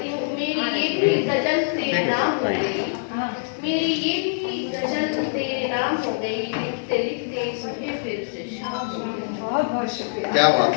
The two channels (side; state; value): right; silent; 63 dB below the other